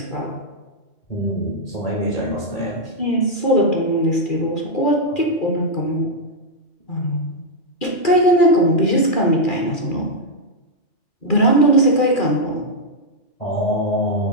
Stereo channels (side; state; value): right; late; 2.4 ms